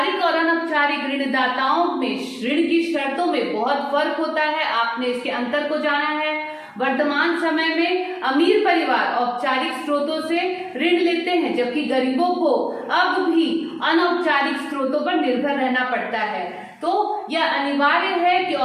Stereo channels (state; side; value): identical; both; correlation 1.00